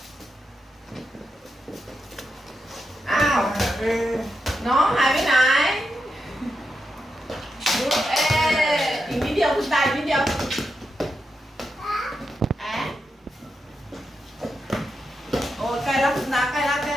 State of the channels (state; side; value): normal; both; correlation 0.86